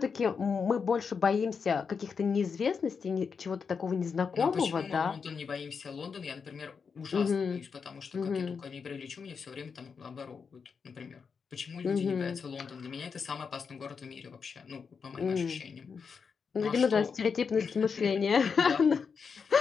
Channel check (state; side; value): quieter; right; 5.8 dB